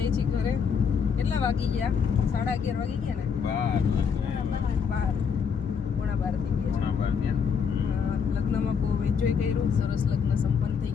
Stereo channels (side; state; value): right; quieter; 6.5 dB